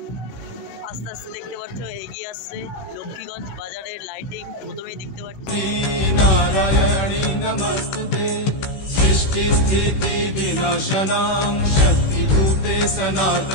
আস্তে আস্তে দেখতে পাচ্ছ এগিয়ে আসছে লক্ষ্মীগঞ্জ বাজারের লাইটিং। প্রথমেই দেখতে পাচ্ছ नारायणी नमस्तुते सृष्टि स्थिति विनाशनां शक्तिभूते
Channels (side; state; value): right; late; 16 ms